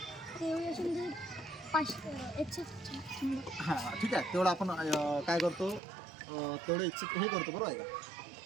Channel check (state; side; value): drops out; left; at 5.8 s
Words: ते असेल 100. हां ठीक आहे, तेवढं आपण काय करतो, तेवढं हे करतो, बरोबर आहे का?